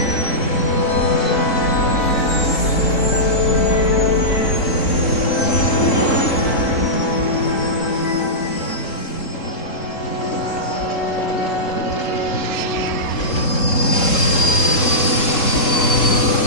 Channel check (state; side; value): late; right; 3.7 ms